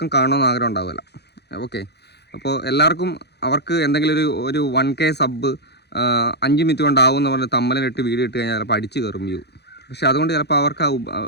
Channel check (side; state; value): right; late; 0.48 ms